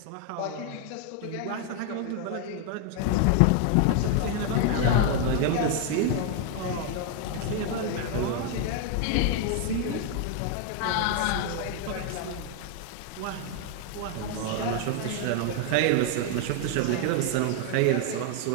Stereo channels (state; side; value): different; both; correlation 0.00